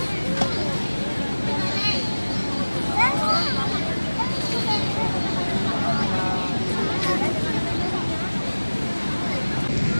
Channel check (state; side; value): inverted; both; correlation -1.00